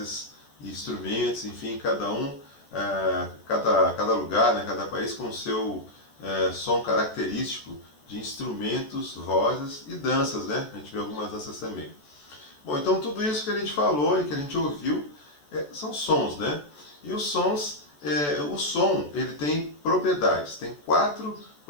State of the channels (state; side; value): late; right; 14 ms